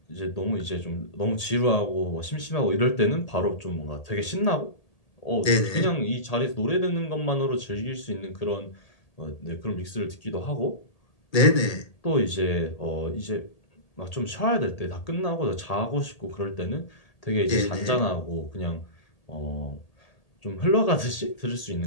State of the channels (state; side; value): late; right; 1.8 ms